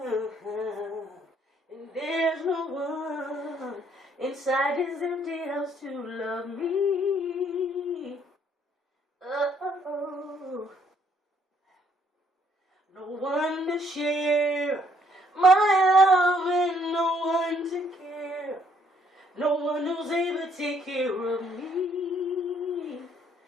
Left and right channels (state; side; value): normal; both; correlation 0.66